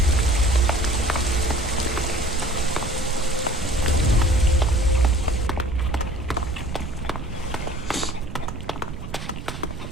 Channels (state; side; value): noise; right; rumble, 9 dB below the sound